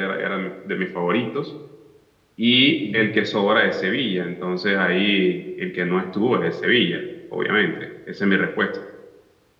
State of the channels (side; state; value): both; identical; correlation 1.00